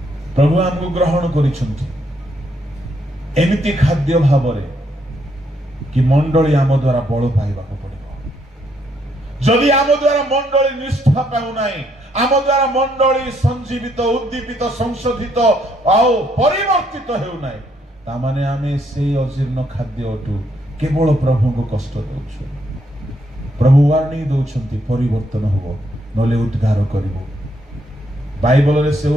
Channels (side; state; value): both; normal; correlation 0.73